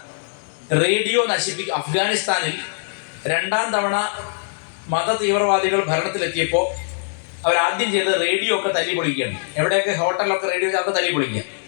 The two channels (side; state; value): right; silent; digital silence